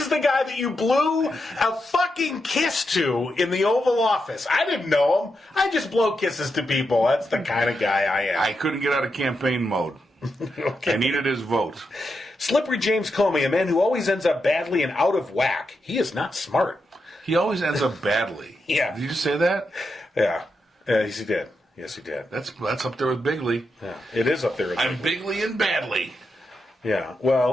the guy that you blew a fucking kiss to in the Oval Office. I didn't know him. I just blow kisses to people. That's the kind of guy I am. I couldn't get out of campaign mode. Okay. I needed his vote. Slippery James Comey, a man who always ends up badly and out of whack. He is not smart. He always ends up badly. Yeah. Did you just say that? Yeah. Yes, he did. Yes, he did. That's up there with Bigley. Yeah. It is up there. I'm Bigley and badly. Yeah.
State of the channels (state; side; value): normal; both; correlation 0.85